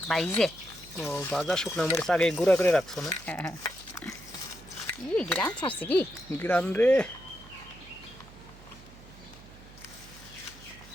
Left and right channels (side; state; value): right; noise; hum, 20 dB below the sound